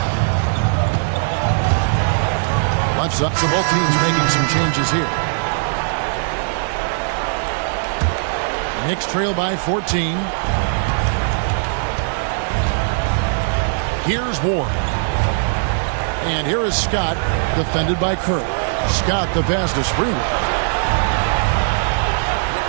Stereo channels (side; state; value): left; silent; digital silence